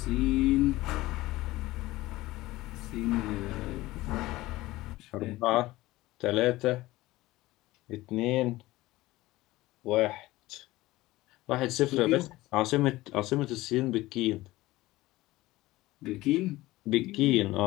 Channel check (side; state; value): right; quieter; 18.3 dB